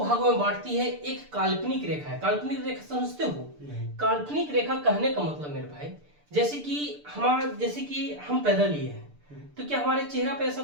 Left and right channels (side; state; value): left; late; 6.8 ms